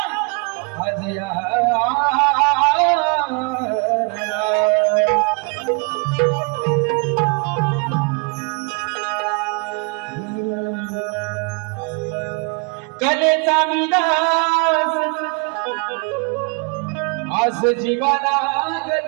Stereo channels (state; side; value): quieter; left; 33.7 dB